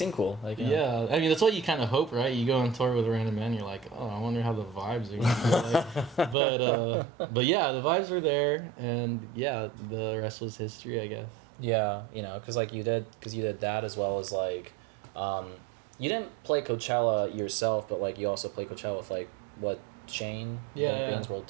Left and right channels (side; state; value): left; drops out; at 6.4 s